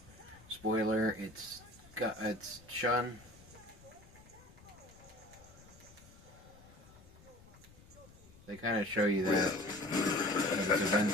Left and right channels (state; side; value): noise; left; rumble, 22 dB below the sound